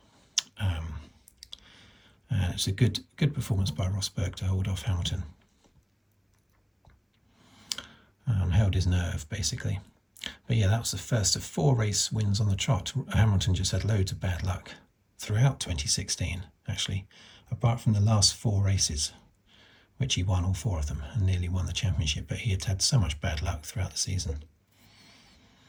It's a good performance by Rosberg to hold off Hamilton. Held his nerve, basically. But yeah, that was the first of 4 race wins on the trot. Hamilton just had loads of bad luck throughout 2016, actually, apart from the last 4 races, which he won all 4 of them and nearly won the championship, but he had had so much bad luck throughout the season.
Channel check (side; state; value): both; identical; correlation 1.00